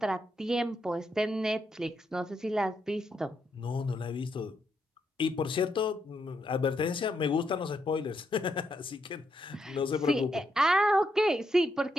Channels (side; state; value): both; normal; correlation 0.79